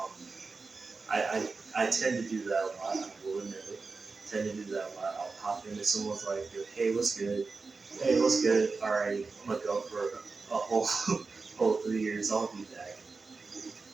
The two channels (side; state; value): left; quieter; 4.2 dB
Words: I tend to do that a lot. I will admit it. I tend to do that a lot. I'll pop into someone's like, hey, what's good? Hey, what's good? All right, I'm gonna go for a whole whole 3 years. I'll be back.